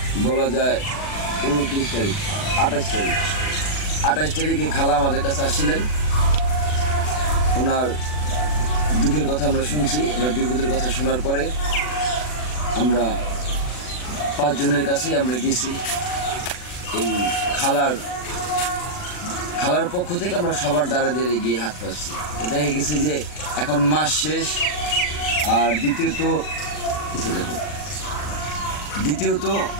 বলা যায় 29 তারিখ 28 তারিখে খালা আমাদের কাছে আসছিলেন। ওনার দুঃখের কথা আমরা শুনছি, ওনার বিপদের কথা শোনার পরে আমরা 5 জনের কাছেই আমরা গেছি। এই খালার পক্ষ থেকে আমরা সবার দ্বারা দিয়ে গিয়ে হাত পাচ্ছি। তো দেখা গেছে যে এখন মাস শেষ, আর দ্বিতীয়ত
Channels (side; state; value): right; late; 40 ms